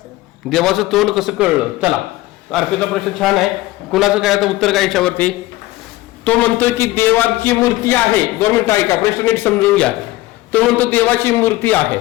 देवाचं तोंड कसं कळलं? चला, अर्पितचा प्रश्न छान आहे. कुणाचं काय आता उत्तर काय याच्यावरती? तो म्हणतोय की देवाची मूर्ती आहे. 2 मिनिटं ऐका, प्रश्न नीट समजून घ्या. तो म्हणतो देवाची मूर्ती आहे.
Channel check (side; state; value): right; quieter; 17.9 dB